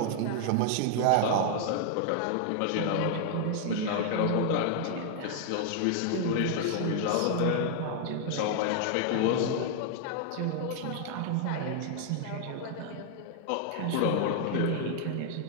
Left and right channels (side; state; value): both; different; correlation 0.00